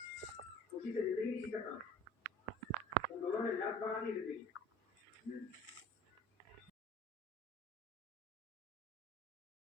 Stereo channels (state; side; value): normal; both; correlation 0.45